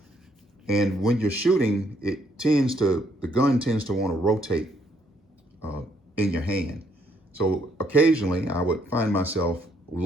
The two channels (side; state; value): both; normal; correlation 0.70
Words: And when you're shooting, the gun tends to want to rotate in your hand. So occasionally I would find myself